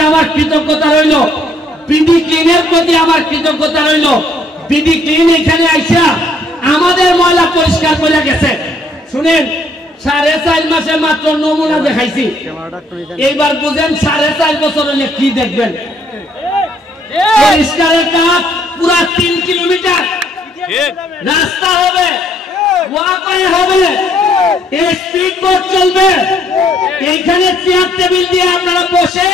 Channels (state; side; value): normal; both; correlation 0.66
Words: আমার কৃতজ্ঞতা রইল। বিডি ক্লিনের প্রতি আমার কৃতজ্ঞতা রইল। বিডি ক্লিন এখানে আইসা আমাদের ময়লা পরিষ্কার করে গেছে। শুনেন, 4.5 মাসে মাত্র নমুনা দেখাইছি, এইবার বুঝেন 4.5 বছর হলে কি দেখবেন। পরিষ্কারের কাজ পুরা 3 কিলোমিটার রাস্তা হবে, ওয়াকওয়ে হবে, স্পিড বোট চলবে। এইখানে চেয়ার টেবিল দিয়ে আপনারা বসে